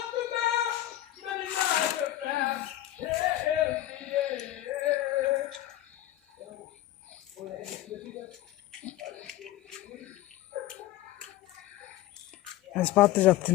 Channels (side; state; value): right; quieter; 14.4 dB